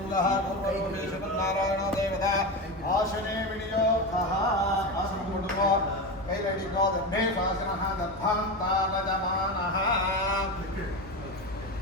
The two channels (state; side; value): normal; both; correlation 0.20